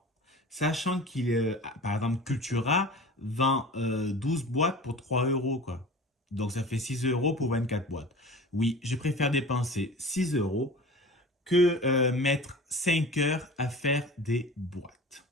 Sachant par exemple, Cultura vend 12 boîtes pour 3 euros, quoi. Donc ça fait 6 euros pour 24 boîtes. Oui, je préfère dépenser 6 euros que mettre 5 heures à faire des boîtes.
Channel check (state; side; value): normal; both; correlation 0.38